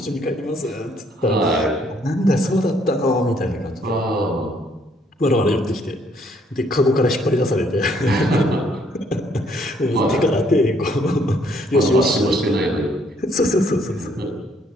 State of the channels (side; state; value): both; normal; correlation 0.67